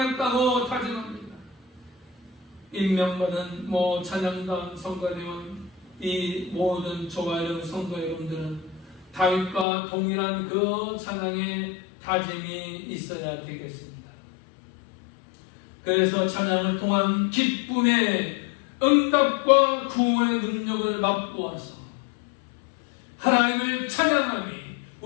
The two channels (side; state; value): right; drops out; at 9.7 s